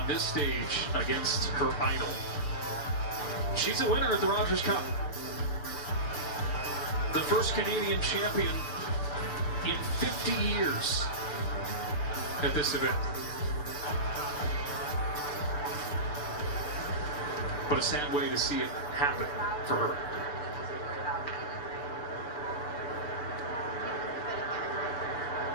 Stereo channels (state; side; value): late; right; 6.8 ms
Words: this stage against her idol. She's a winner at the Rogers Cup. The first Canadian champion in 50 years at this event. But a sad way to see it happen for her.